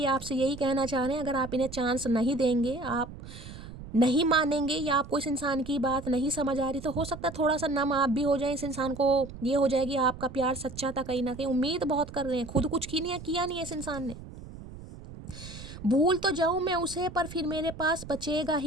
आपसे यही कहना चाह रहे हैं, अगर आप इन्हें चांस नहीं देंगे, आप नहीं मानेंगे, या आपको इस इंसान की बात नहीं समझ आ रही, तो हो सकता है थोड़ा सा नम आप भी हो जाए। इस इंसान को ये हो जाएगी आपका प्यार सच्चा था कहीं ना कहीं। उम्मीद बहुत कर रहे हैं, खुद कुछ किया नहीं है इस इंसान ने। भूल तो जाऊं मैं उसे, पर फिर मेरे पास बचेगा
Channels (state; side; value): noise; right; rumble, 13 dB below the sound